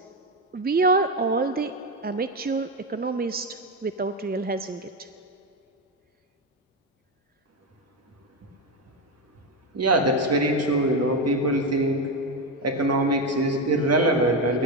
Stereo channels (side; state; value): both; normal; correlation 0.11